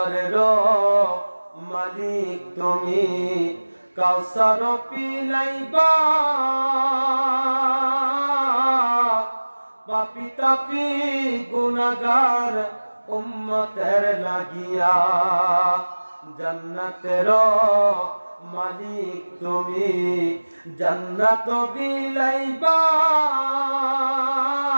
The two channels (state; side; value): inverted; both; correlation -1.00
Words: মালিক তুমি, কাউসার পিলাইবা পাপি তাপি গুনাহগার উম্মতের লাগিয়া। জান্নাতের মালিক তুমি জান্নাত বিলাইবা